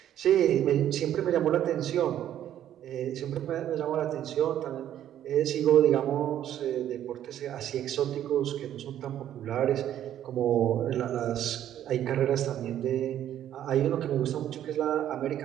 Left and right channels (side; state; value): left; quieter; 11.2 dB